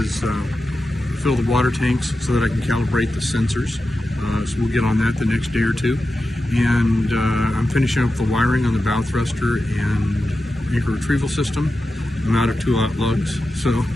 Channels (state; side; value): normal; both; correlation 0.92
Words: fill the water tanks so that I can calibrate the sensors. So we'll get on that the next day or two. And I'm finishing up the wiring on the bow thruster and anchor retrieval system. I'm out of 2-aught lugs, so